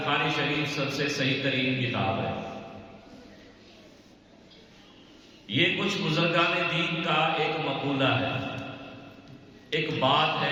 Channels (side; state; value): both; identical; correlation 1.00